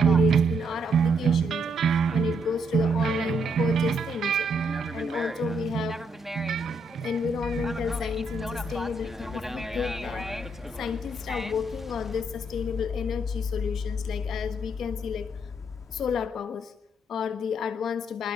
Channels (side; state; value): both; normal; correlation 0.74